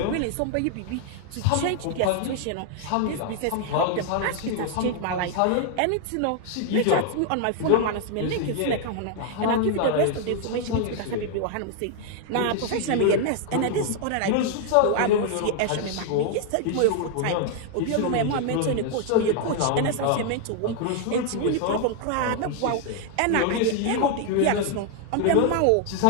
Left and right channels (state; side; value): different; both; correlation 0.00